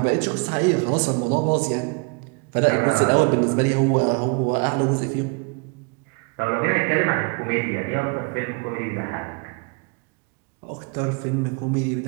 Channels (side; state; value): left; quieter; 31.6 dB